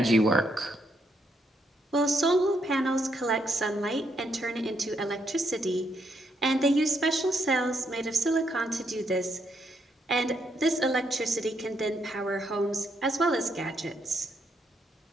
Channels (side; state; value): both; normal; correlation 0.76